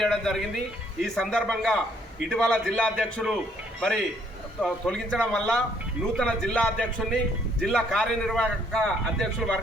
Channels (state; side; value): normal; both; correlation 0.66